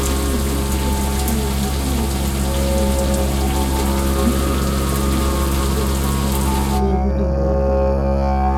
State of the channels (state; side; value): identical; both; correlation 1.00